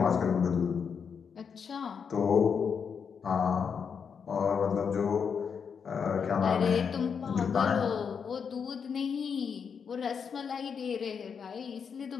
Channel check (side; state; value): right; quieter; 6.5 dB